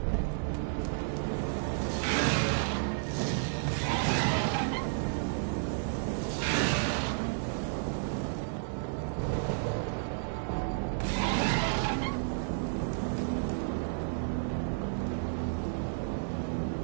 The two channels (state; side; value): silent; left; 56 dB below the other